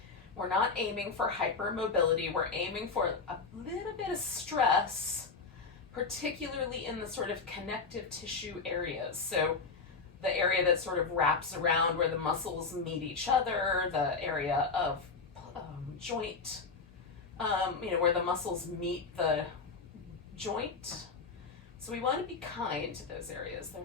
We're not aiming for hypermobility. We're aiming for a little bit of stress, particularly in the sort of connective tissue areas. So the area that sort of wraps around where the muscles meet each other, the area of joint, where the muscles meet the joint. So we want to be kind to those areas.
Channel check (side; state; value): right; quieter; 4.6 dB